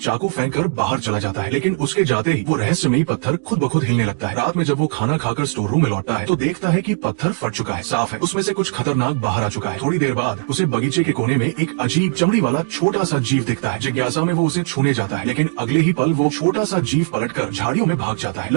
फेंक कर बाहर चला जाता है लेकिन उसके जाते ही वो रहस्यमयी पत्थर खुद ब खुद हिलने लगता है। रात में जब वो खाना खाकर स्टोर रूम में लौटता है तो देखता है कि पत्थर फट चुका है, साफ है, उसमें से कुछ खतरनाक बाहर आ चुका है। थोड़ी देर बाद उसे बगीचे के कोने में एक अजीब चमड़ी वाला छोटा सा जीव दिखता है। जिज्ञासा में वो उसे छूने जाता है लेकिन अगले ही पल वो छोटा सा जीव पलटकर झाड़ियों में भाग जाता है।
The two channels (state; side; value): silent; left; digital silence